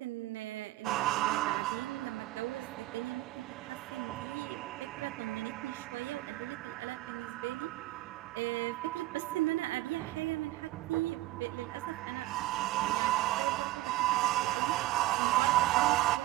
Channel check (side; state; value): left; quieter; 16.7 dB